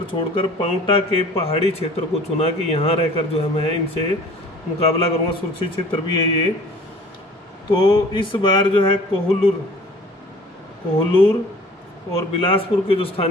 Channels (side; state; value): both; normal; correlation 0.49